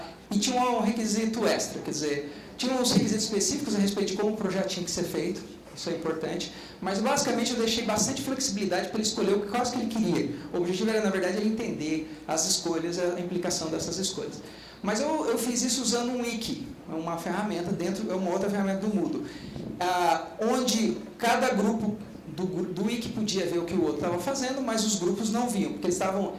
e tinha um requisito extra, quer dizer, Tinha uns requisitos específicos a respeito de como o projeto tinha que ser feito, isso é importante, mas basicamente eu deixei bastante flexibilidade para ele escolher o que ele queria. O objetivo era, na verdade, ele entender as escolhas, a implicação dessas escolhas. Mas eu fiz isso usando um wiki, uma ferramenta uma outra ferramenta do Moodle, onde cada grupo do wiki podia ver o que o outro estava fazendo, mas os grupos não viam, porque eles estavam,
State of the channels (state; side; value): identical; both; correlation 1.00